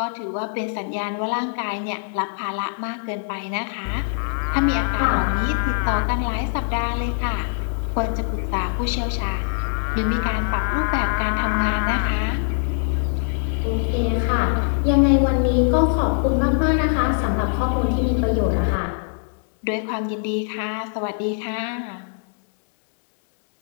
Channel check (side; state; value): right; silent; digital silence